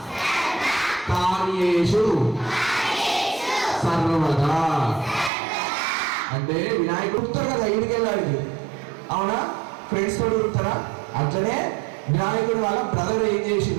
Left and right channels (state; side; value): drops out; left; at 5.3 s